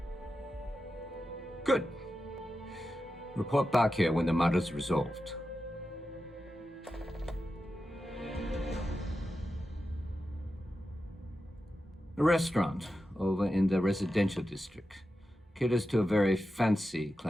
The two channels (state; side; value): normal; both; correlation 0.91